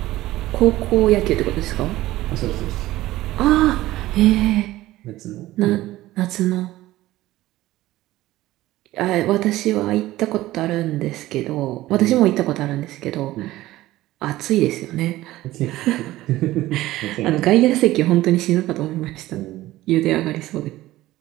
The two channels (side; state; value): left; quieter; 16.4 dB